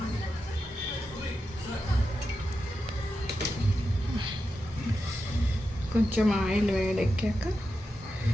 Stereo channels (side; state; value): both; normal; correlation 0.89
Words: కొంచెం ఆయిల్ వేడెక్కాక